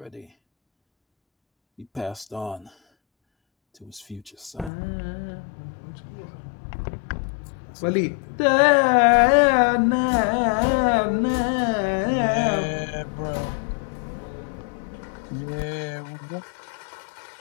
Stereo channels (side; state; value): right; drops out; at 4.7 s